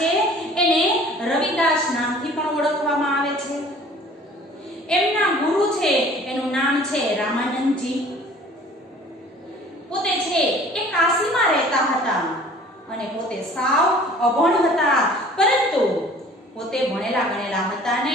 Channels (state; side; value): normal; both; correlation 0.50